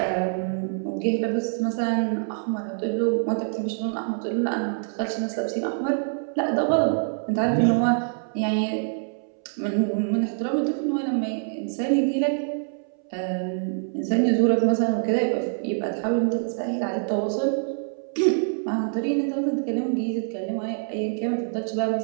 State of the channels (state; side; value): silent; left; 62 dB below the other